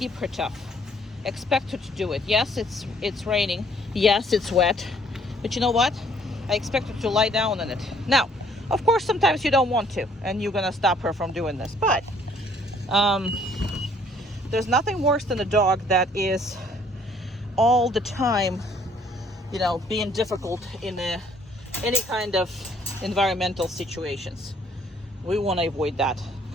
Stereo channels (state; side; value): normal; both; correlation 0.62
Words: her tough. Expect her to do it. Yes, it's raining. Yes, it's wet. But you know what? I expect her to lie down on it. Now, of course, sometimes you don't want to, and you're gonna stop her from doing this. But there's nothing worse than a dog that is all the time, you know, being difficult in any kind of environmental situations. We want to avoid that.